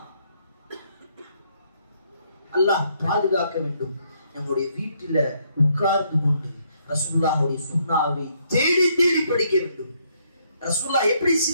அல்லாஹ் பாதுகாக்க வேண்டும். நம்முடைய வீட்டில உட்கார்ந்து கொண்டு ரசூலுல்லாஹ்வுடைய சுன்னாவை தேடி தேடி படிக்க வேண்டும். ரசூலுல்லாஹ் எப்படி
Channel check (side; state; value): both; inverted; correlation -0.71